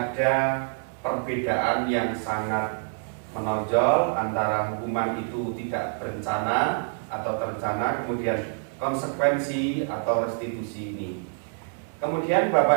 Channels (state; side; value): silent; left; 61 dB below the other